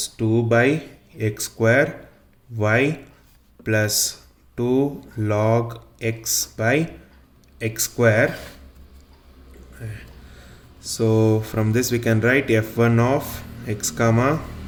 2 by x square y plus 2 log x by x square. So from this we can write f1 of x comma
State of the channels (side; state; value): both; identical; correlation 1.00